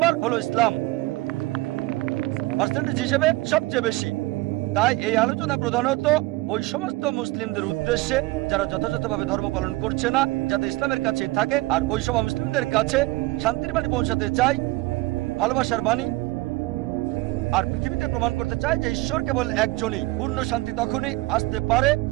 হলো ইসলাম, পার্সেন্টেজ হিসেবে সবচেয়ে বেশি। তাই এই আলোচনা প্রধানত ওই সমস্ত মুসলিমদের উদ্দেশ্যে যারা যথাযথভাবে ধর্ম পালন করছে না, যাতে ইসলামের কাছেই থাকে। আর ওই সব মুসলিমদের কাছে শান্তির বাণী পৌঁছাতে চাই, ভালোবাসার বাণী। আর পৃথিবীতে প্রমাণ করতে চায় যে ঈশ্বর কেবল একজনই। পূর্ণ শান্তি তখনই আসতে পারে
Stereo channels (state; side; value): quieter; left; 20.5 dB